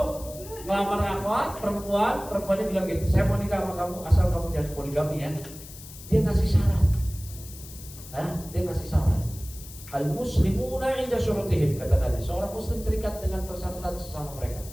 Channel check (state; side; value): noise; left; hiss, 16 dB below the sound